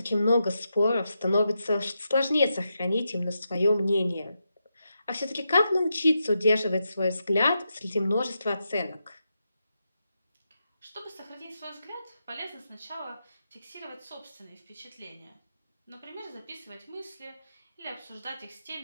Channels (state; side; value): inverted; both; correlation -0.86